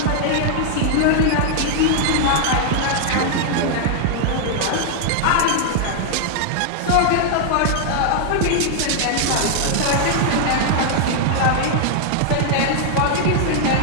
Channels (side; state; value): both; different; correlation 0.00